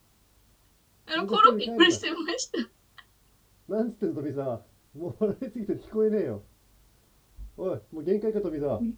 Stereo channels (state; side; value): identical; both; correlation 1.00